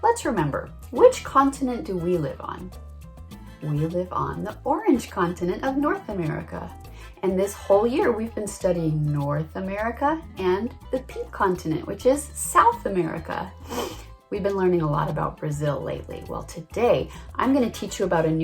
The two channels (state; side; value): identical; both; correlation 1.00